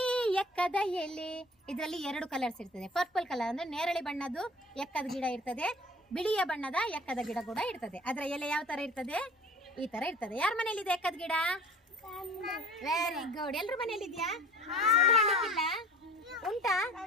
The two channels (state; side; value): normal; both; correlation 0.45